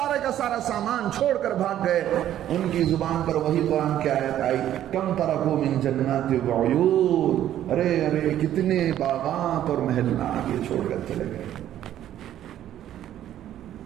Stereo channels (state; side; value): quieter; left; 11.8 dB